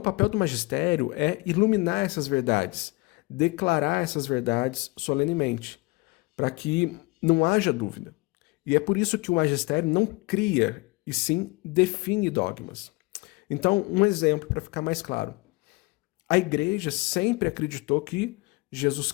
papel do magistério é iluminar essas verdades, declarar essas verdades solenemente, para que não haja dúvida. E é por isso que o magistério não cria, e sim define dogmas. Então, um exemplo para ficar mais claro. A Igreja sempre acreditou que Jesus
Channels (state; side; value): quieter; right; 24.8 dB